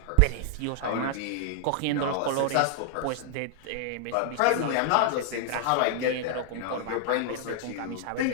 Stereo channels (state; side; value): different; both; correlation -0.01